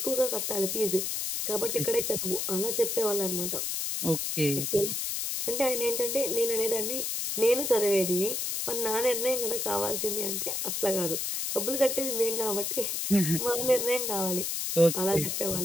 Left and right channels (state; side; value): noise; left; hiss, 1 dB below the sound